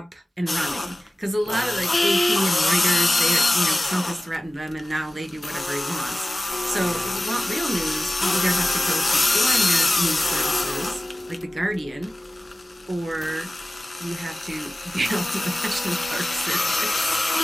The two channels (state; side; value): normal; both; correlation 0.96